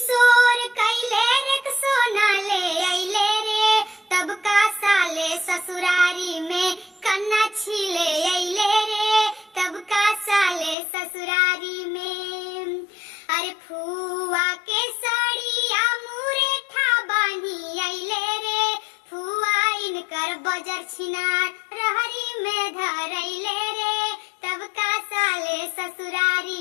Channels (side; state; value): right; drops out; at 10.8 s